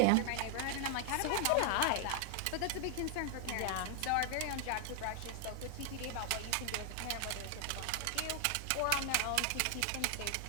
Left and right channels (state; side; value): different; both; correlation 0.00